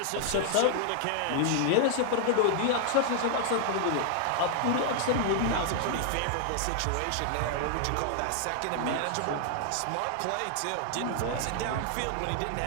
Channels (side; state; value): both; different; correlation 0.00